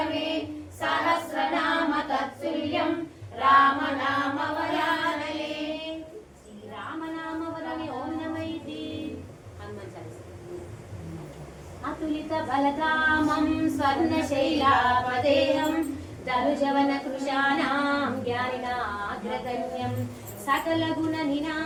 सहस्रनाम तत्तुल्यं राम नाम वरानने श्रीराम नाम वरने ओम नमः इति हनुमान चालीसा अतुलित बलधामं स्वर्णशैलापदेहं दरुजवन कृशानां ज्ञानिनाग्रगण्यं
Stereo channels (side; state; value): both; identical; correlation 1.00